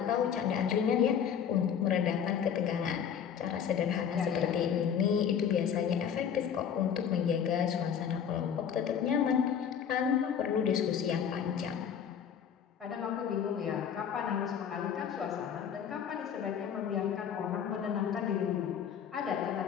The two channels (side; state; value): right; quieter; 8.1 dB